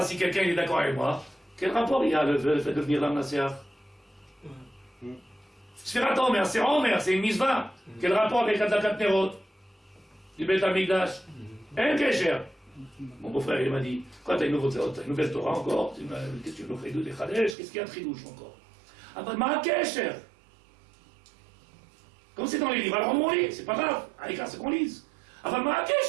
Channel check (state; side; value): drops out; left; at 17.6 s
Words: si quelqu'un est d'accord avec moi, quel rapport il y a le fait de devenir Lamnaser? Sfirat HaOmer, c'est Homer, c'est une mitzvah. Quel rapport avec Adlakat Nerot du Beth Amikdash? Un Kesher. Mon beau-frère, il m'a dit, quoi, t'as une nouvelle Torah encore? Qu'est-ce que tu nous fais des Chadesh? Qu'est-ce qu'il y a de Chidouche encore? Ah ben, ma Kesher. Comme c'est dans les livres, alors on lit, c'est pas grave. Allez, c'est qu'on lise. Ah ben, ma